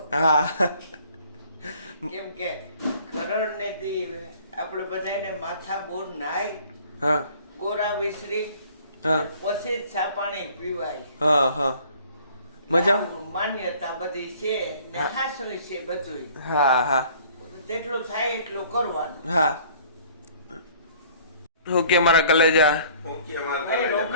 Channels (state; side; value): inverted; both; correlation -0.54